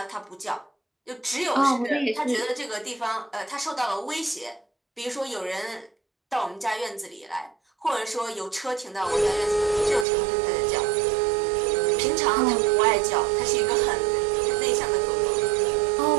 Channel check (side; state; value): left; drops out; at 10.1 s